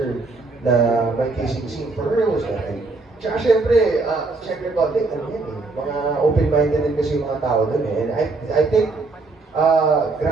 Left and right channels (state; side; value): quieter; left; 3.6 dB